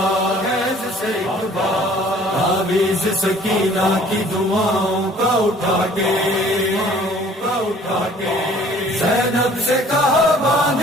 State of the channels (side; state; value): both; normal; correlation 0.53